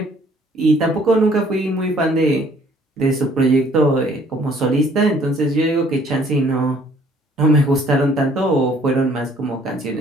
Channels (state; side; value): normal; both; correlation 0.59